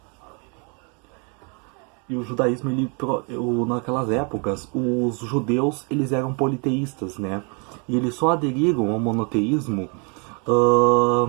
E o judaísmo, ele, naquelas épocas, os judeus eles eram politeístas, né? E eles só aderiram ao monoteísmo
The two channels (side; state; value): left; quieter; 35.6 dB